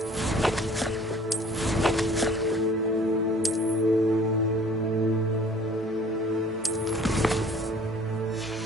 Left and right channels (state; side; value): normal; both; correlation 0.52